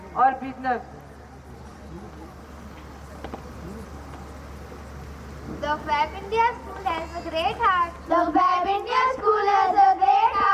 or business. The Fab India School has a great heart. The Fab India School has a great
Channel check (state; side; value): identical; both; correlation 1.00